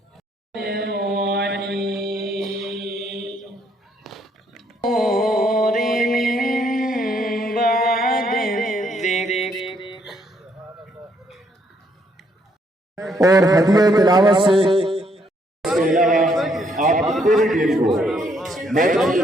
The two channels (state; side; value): normal; both; correlation 0.70